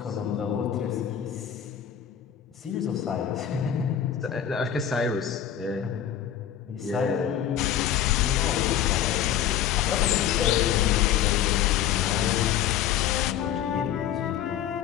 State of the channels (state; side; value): quieter; right; 10.1 dB